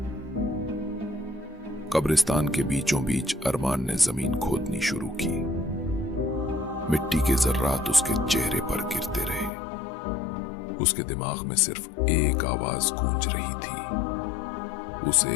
कब्रिस्तान के बीचों बीच अरमान ने जमीन खोदनी शुरू की। मिट्टी के जर्रात उसके चेहरे पर गिरते रहे। उसके दिमाग में सिर्फ एक आवाज गूंज रही थी, उसे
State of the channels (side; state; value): right; drops out; at 9.5 s